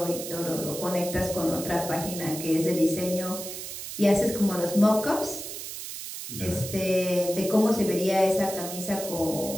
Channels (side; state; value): right; noise; hiss, 8 dB below the sound